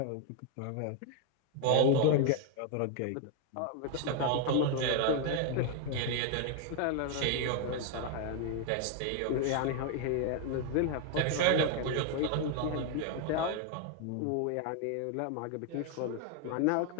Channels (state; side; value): different; both; correlation 0.00